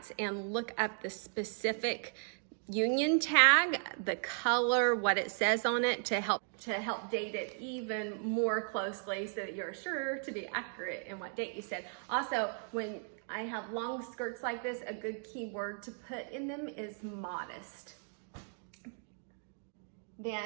and look up the specific union tag, the color, what it says on it, to help date it even more closely so that you're sure to be accurate in what date you said. Also, when I have long skirts like this, a good keyword to put in them is modest.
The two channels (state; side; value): silent; left; 54 dB below the other